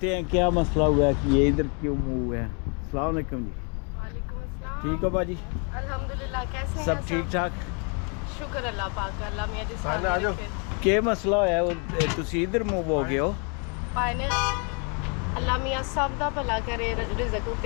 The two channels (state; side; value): quieter; right; 36.8 dB